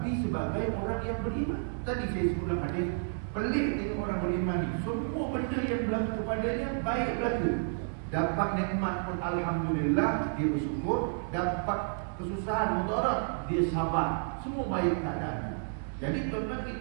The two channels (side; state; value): left; silent; digital silence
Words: sebagai orang yang beriman. Tadi saya sebut dalam hadis, pelik tengok orang beriman ni, semua benda yang berlaku kepadanya baik berlaku. Dapat nikmat pun alhamdulillah, dia bersyukur. Dapat kesusahan, mudarat, dia sabar. Semua baik keadaan. Jadi tuan-tuan,